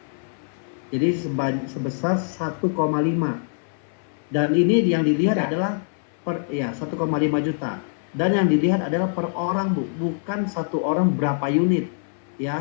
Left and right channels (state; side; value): silent; right; 60 dB below the other